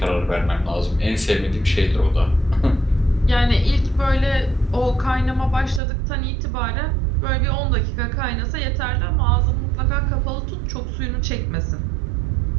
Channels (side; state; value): left; drops out; at 5.8 s